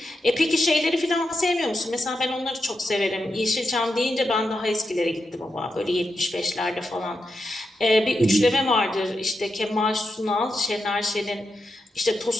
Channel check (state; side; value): normal; both; correlation 0.87